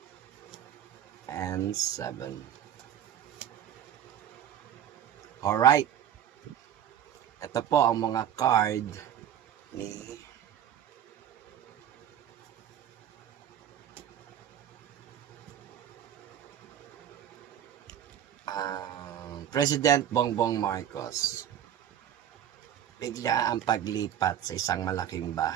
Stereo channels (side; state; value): left; quieter; 10.2 dB